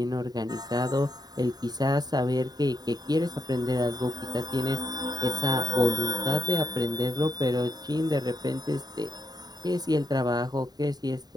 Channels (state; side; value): late; left; 0.19 ms